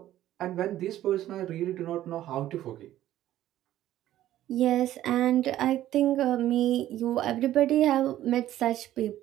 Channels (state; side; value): quieter; left; 13.3 dB